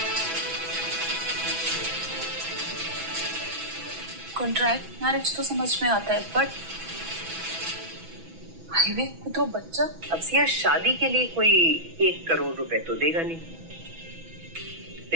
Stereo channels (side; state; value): left; late; 6.1 ms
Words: कॉन्ट्रैक्ट मैरिज तो समझ में आता है, बट हाईवे को तो बच्चा। अब सिया, शादी के लिए कोई 1 करोड़ रुपए तो देगा नहीं।